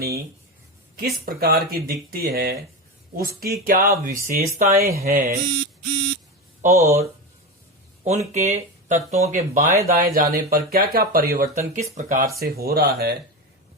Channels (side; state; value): both; normal; correlation 0.19